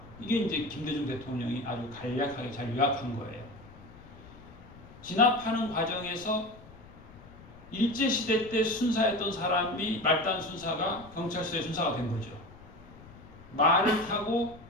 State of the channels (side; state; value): left; noise; rumble, 20 dB below the sound